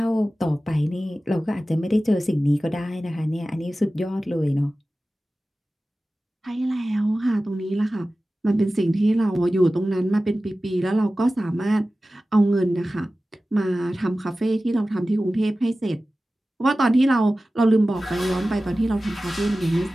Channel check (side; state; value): both; normal; correlation 0.96